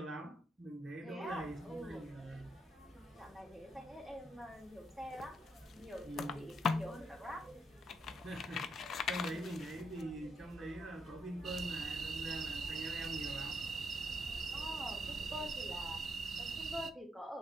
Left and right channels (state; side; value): normal; both; correlation 0.77